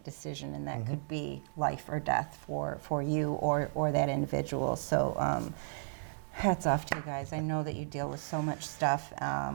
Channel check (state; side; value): silent; left; digital silence